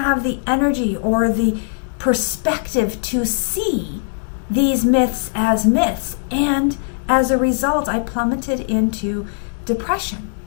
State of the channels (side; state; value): right; silent; digital silence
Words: the energy or the perspective to see these myths as myths. And as a result, I plummeted into depression.